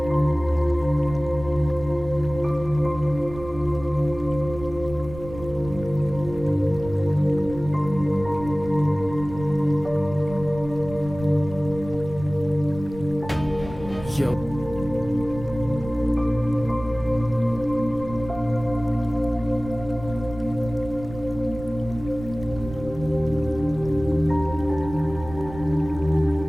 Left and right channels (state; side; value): noise; right; rumble, 13 dB below the sound